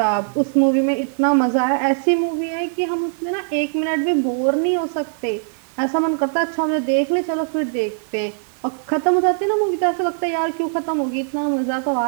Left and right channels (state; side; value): silent; left; digital silence